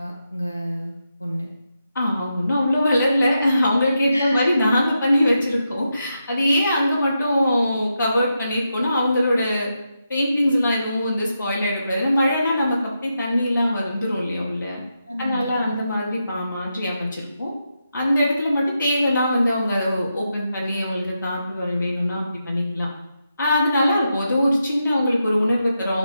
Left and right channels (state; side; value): inverted; both; correlation -0.86